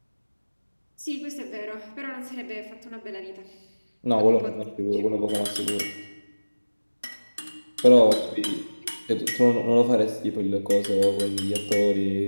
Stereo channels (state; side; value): inverted; both; correlation -1.00